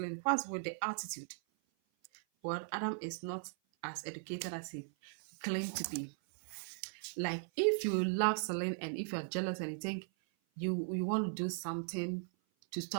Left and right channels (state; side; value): silent; left; 52 dB below the other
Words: What's with the attitude? Well, Adam is not as educated as he claimed to be. Like, if you love Celine and if you're jealous and you think you want to do something to